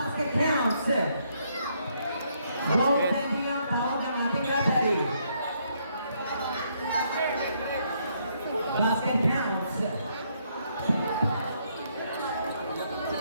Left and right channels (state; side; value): inverted; both; correlation -0.72